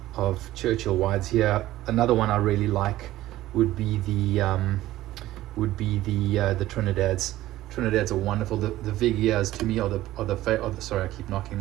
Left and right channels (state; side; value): quieter; left; 15.3 dB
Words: of Churchill Wides here. Another one I really like would be the Trinidad's. Trinidad's are wonderful. The Vigias to me are the sorry, I keep knocking